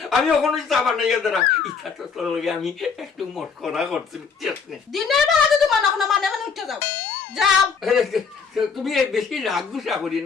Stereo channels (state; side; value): quieter; right; 5.7 dB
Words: আমি ওখানে চাবা নাই এদারা ইচ্ছা তো তোর লগে আমি একটু মস্করা করছি বুঝছিস নি দিনের বেলা যদি মানে উঠে যাও তুমি বেশি রাগ গুসা করি